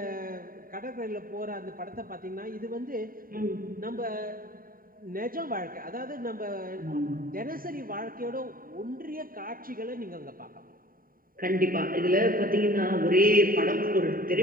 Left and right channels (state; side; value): late; left; 0.41 ms